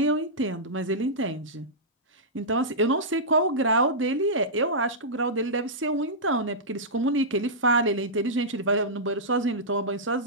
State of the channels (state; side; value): normal; both; correlation -0.14